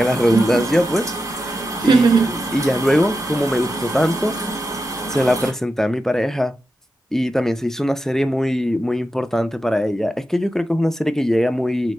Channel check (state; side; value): normal; both; correlation 0.89